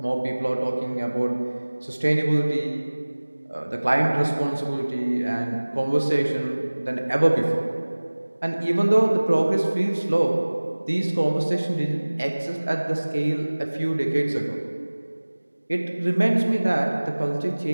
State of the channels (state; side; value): inverted; both; correlation -1.00